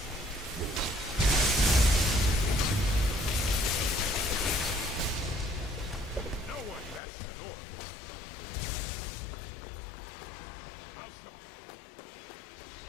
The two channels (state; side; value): drops out; right; at 7.0 s